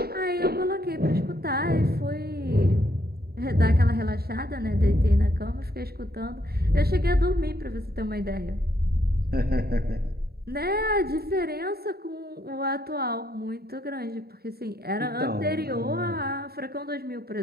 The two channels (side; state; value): left; late; 0.45 ms